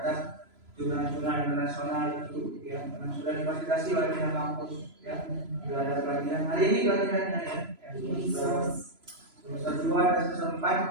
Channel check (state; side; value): late; left; 3.0 ms